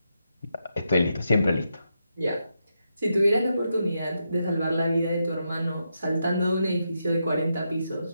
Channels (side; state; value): both; inverted; correlation -0.84